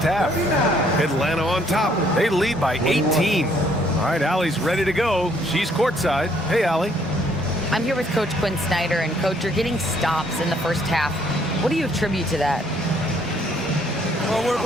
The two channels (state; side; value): normal; both; correlation 0.65